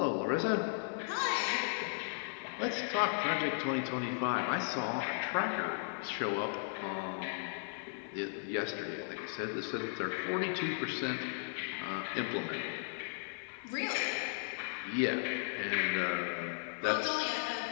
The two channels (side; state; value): right; silent; 54 dB below the other